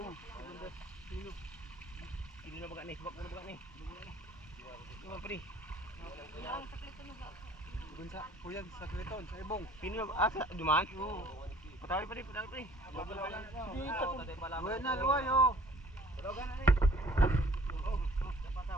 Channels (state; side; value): normal; both; correlation 0.54